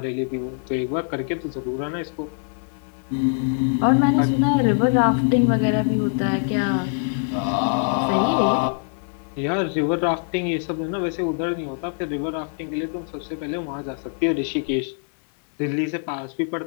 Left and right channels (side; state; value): right; silent; 60 dB below the other